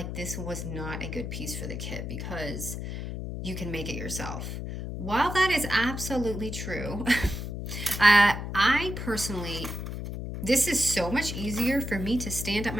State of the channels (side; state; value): left; noise; hum, 6 dB below the sound